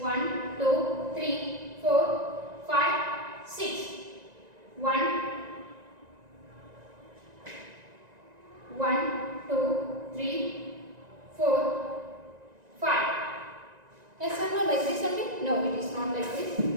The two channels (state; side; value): late; left; 1.9 ms